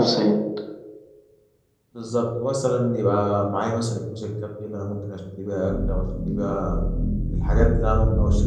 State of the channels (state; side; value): identical; both; correlation 1.00